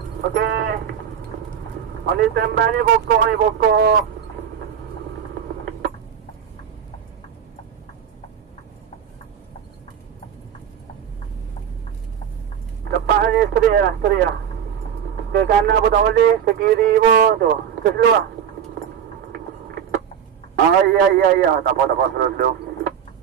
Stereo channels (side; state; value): left; quieter; 8.5 dB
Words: Okey. On the standby ni pokok. Lepas ni steri lah. Ke kanan pun tak boleh, ke kiri pun tu. Ke slow lah. Ya. Tak apa slow.